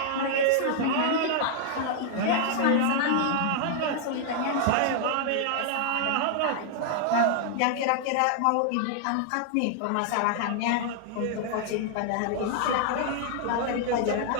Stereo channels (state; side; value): different; both; correlation -0.01